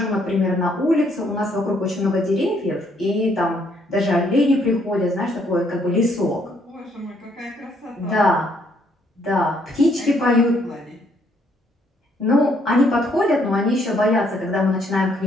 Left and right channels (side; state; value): both; normal; correlation 0.69